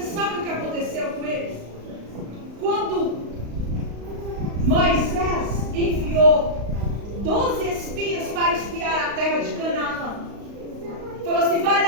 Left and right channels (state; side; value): late; left; 35 ms